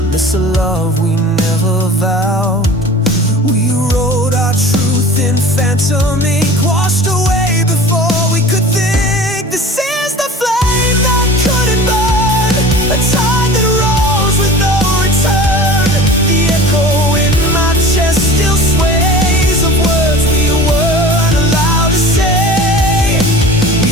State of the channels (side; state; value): both; normal; correlation 0.39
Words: miss a love we never vowed. We wrote our truth in phantom ink, washed away before we could think. This is the flame that couldn't burn, a tide that rolls with no return. The echo in my chest still sways of words we weren't allowed to say. We